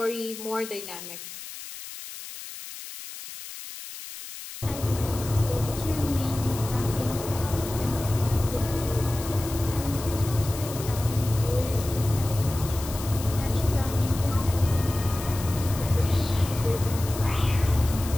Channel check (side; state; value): left; noise; hiss, 12 dB below the sound